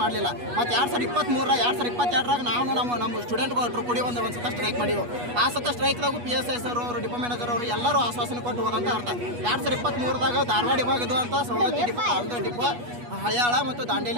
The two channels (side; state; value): left; late; 8.3 ms